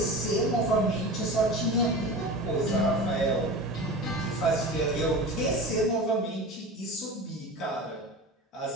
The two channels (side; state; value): both; normal; correlation 0.31